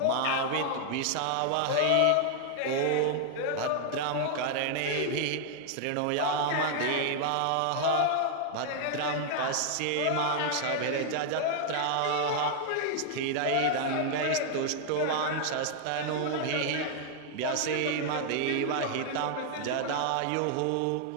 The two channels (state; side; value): different; both; correlation 0.00